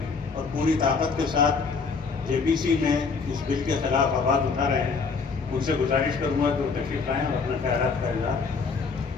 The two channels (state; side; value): quieter; right; 4.9 dB